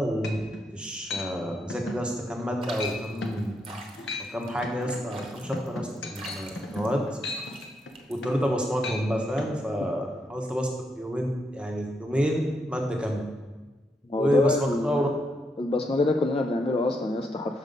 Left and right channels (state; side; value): normal; both; correlation 0.79